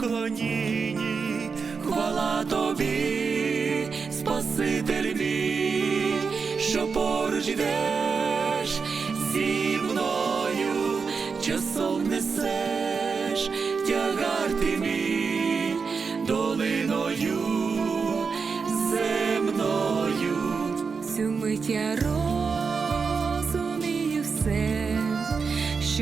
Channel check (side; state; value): left; quieter; 5.2 dB